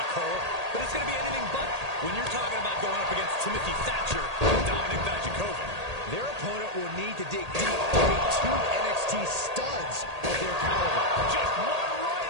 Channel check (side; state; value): left; late; 1.8 ms